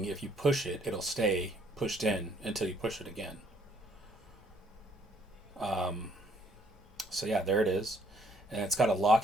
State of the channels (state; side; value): normal; both; correlation 0.65